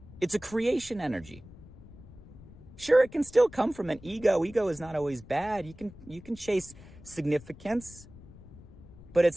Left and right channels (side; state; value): left; noise; rumble, 19 dB below the sound